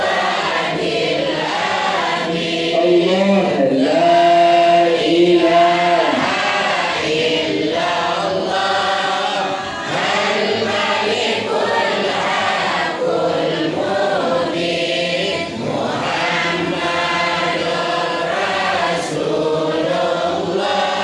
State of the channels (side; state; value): both; identical; correlation 1.00